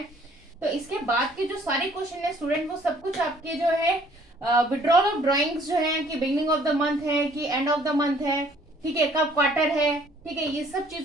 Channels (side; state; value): both; normal; correlation 0.59